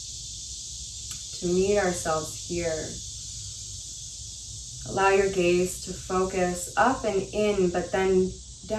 to meet ourselves here? Allow your gaze to focus up and in, but then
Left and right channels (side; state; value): both; identical; correlation 1.00